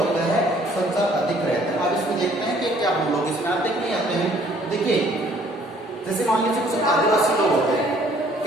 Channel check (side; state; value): both; normal; correlation 0.60